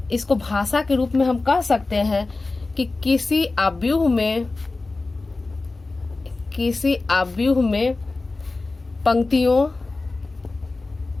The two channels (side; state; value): right; quieter; 3.5 dB